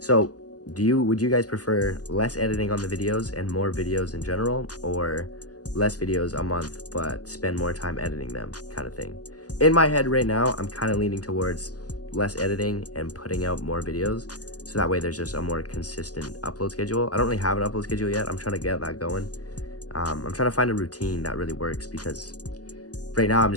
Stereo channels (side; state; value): right; late; 0.67 ms